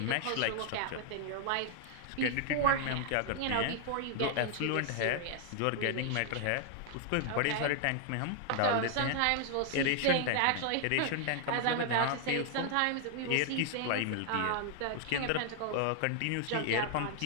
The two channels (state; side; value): different; both; correlation 0.00